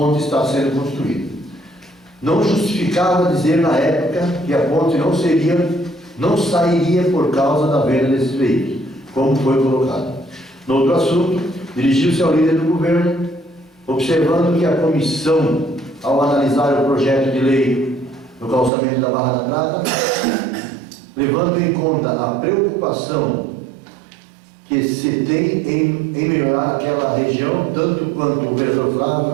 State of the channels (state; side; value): drops out; left; at 18.7 s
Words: está sendo construída. Não justificava dizer na época que a ponte não sairia por causa da venda desses veículos, como foi colocado. No outro assunto, dirigiu-se ao líder do governo, observando que a comissão, ao analisar o projeto de lei do calçamento da Barra da Prata, levando em conta a preocupação que se tem em melhorar aquela região, tanto quanto o vereador